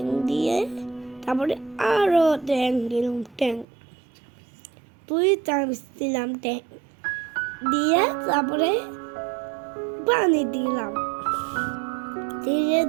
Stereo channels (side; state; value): left; drops out; at 3.7 s